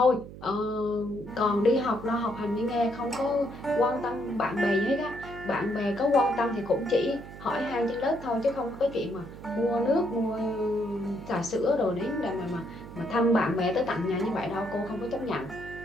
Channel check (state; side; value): noise; right; hum, 14 dB below the sound